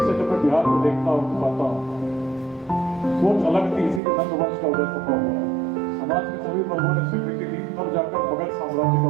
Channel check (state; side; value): drops out; left; at 4.0 s